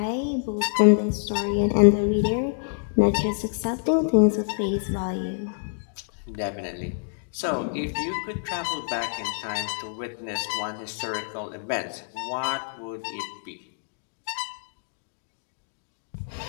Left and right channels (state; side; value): silent; right; digital silence